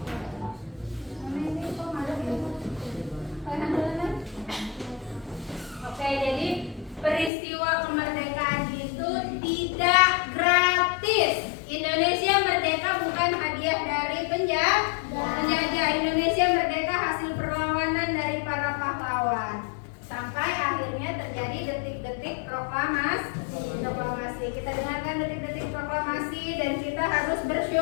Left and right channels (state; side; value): drops out; right; at 7.3 s